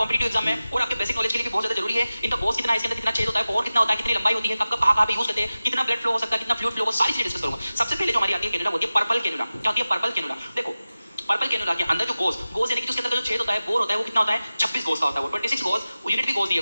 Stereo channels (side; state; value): both; inverted; correlation -0.95